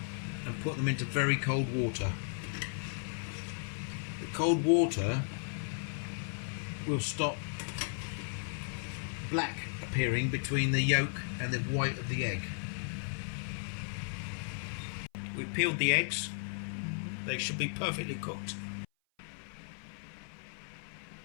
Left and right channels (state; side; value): silent; right; 54 dB below the other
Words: and put them into very cold water. The cold water will stop black appearing between the yolk and the white of the egg. We've peeled the eggs. They should be perfectly cooked.